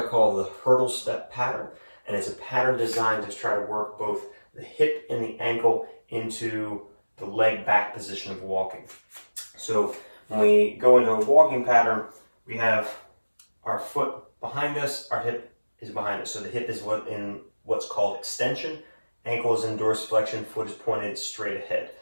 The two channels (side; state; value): both; inverted; correlation -1.00